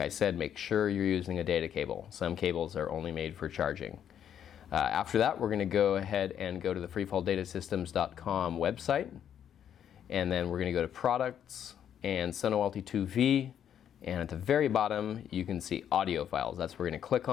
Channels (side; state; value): right; quieter; 9.4 dB